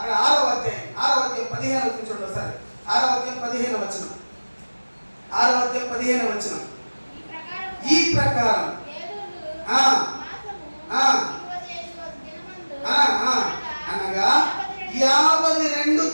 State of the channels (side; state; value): both; inverted; correlation -1.00